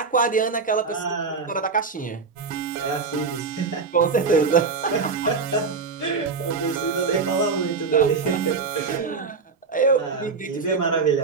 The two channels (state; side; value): quieter; left; 4.8 dB